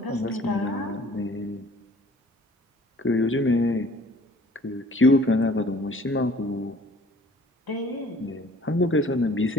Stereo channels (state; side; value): normal; both; correlation 0.53